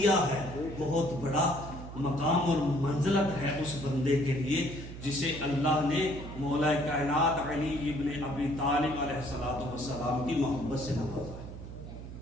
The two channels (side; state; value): right; noise; hum, 11 dB below the sound